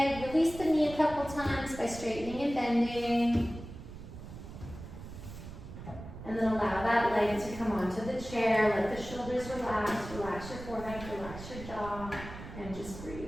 Release the knee a couple times by straightening and bending. And then allow that leg to come onto the chair. Let the shoulders relax. Relax your forehead, relax your jaw, and just breathe.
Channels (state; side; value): noise; right; rumble, 12 dB below the sound